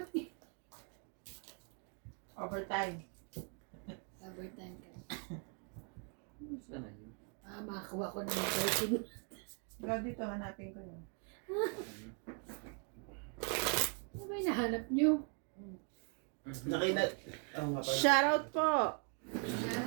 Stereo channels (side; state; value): left; quieter; 38.1 dB